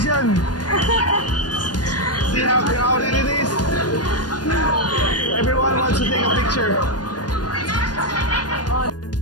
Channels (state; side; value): late; right; 0.69 ms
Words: See how crowded it is? Everyone wants to take a picture.